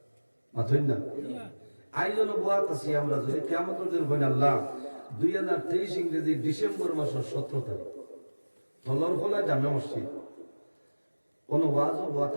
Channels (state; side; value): inverted; both; correlation -1.00